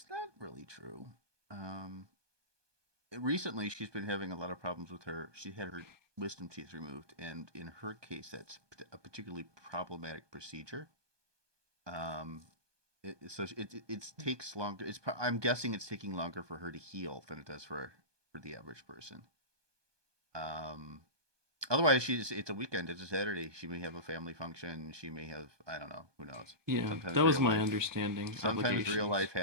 not really true. Um, Recently she's been having a lot of problems with her. She had her wisdom teeth removed, and in her case, that's a particularly problematic procedure. Um, it takes longer. I'm guessing it's taking longer for her to heal than it does for the average person. Um, Otherwise, it's a weekend. It's a Saturday. She may have a family function. She may have I don't know. Who knows? Yeah, Sometimes that was real my life. understanding. Sometimes real Obligations. life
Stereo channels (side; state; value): left; late; 1.2 ms